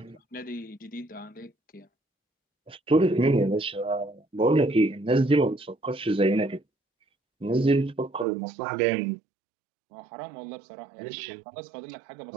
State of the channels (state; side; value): drops out; left; at 8.2 s